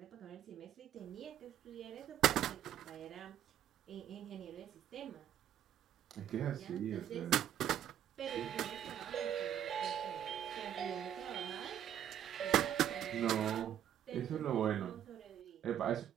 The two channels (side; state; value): left; quieter; 10.4 dB